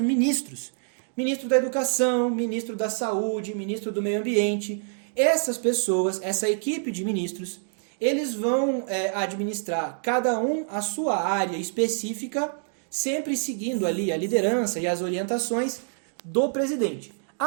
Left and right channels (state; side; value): silent; left; digital silence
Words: Ministro da Educação, ministro da Saúde, ministro do Meio Ambiente. Essas pessoas, essa equipe de ministros, eles vão administrar cada um a sua área específica, sempre seguindo ali a liderança e as orientações do presidente.